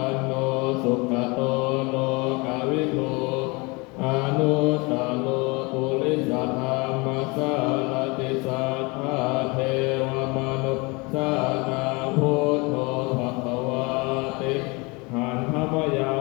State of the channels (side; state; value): right; quieter; 27.2 dB